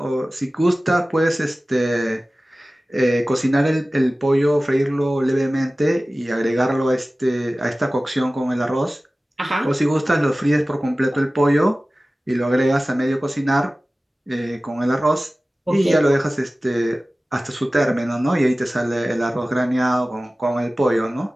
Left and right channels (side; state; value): both; normal; correlation 0.97